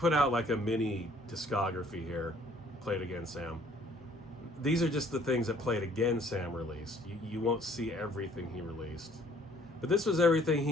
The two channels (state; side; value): normal; both; correlation 0.59